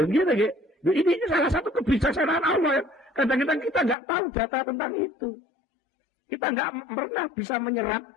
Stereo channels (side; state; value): right; drops out; at 4.0 s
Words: gitu, ini salah satu kebijaksanaan Allah ya. Kadang-kadang kita nggak tahu data tentang itu. Kita nggak pernah bisa